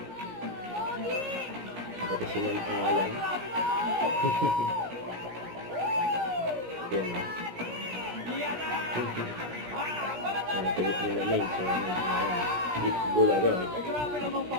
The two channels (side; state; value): left; late; 17 ms